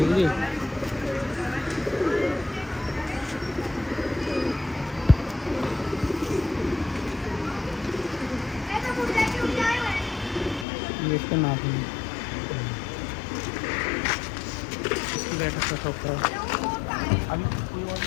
है। ये इसका नाखून है। इसकी बैठक का शौक करो। अभी कोई और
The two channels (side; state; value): right; drops out; at 10.7 s